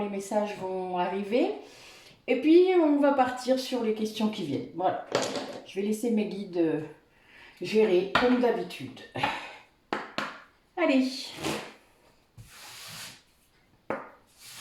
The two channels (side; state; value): both; identical; correlation 1.00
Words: messages vont arriver. Et puis, on va partir sur les questions qui viennent. Voilà. Je vais laisser mes guides gérer comme d'habitude. Allez.